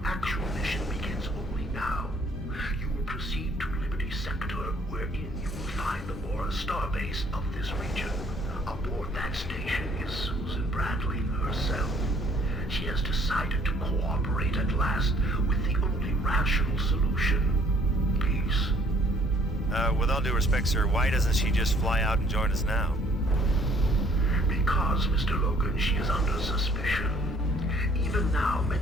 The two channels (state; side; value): normal; both; correlation 0.60